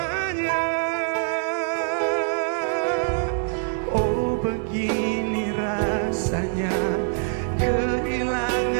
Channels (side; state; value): left; silent; digital silence